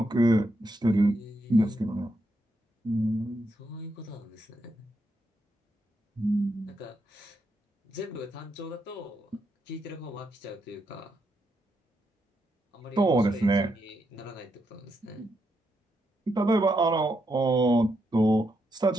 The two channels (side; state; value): both; normal; correlation 0.80